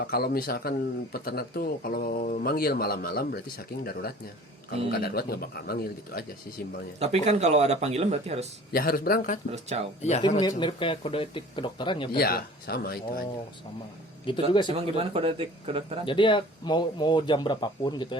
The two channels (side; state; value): both; normal; correlation 0.46